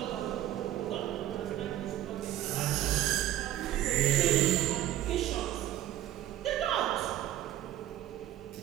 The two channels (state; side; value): quieter; left; 13.2 dB